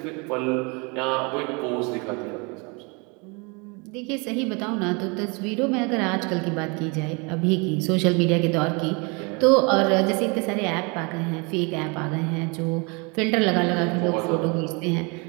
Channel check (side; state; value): left; quieter; 30.5 dB